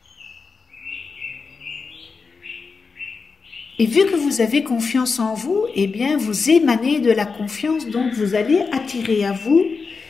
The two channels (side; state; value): right; quieter; 4.8 dB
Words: Et vu que vous avez confiance en vous, eh bien, vous émanez de la confiance, donc vous allez attirer à vous